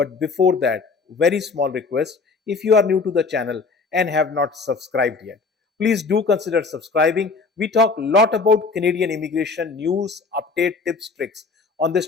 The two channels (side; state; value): right; quieter; 4.5 dB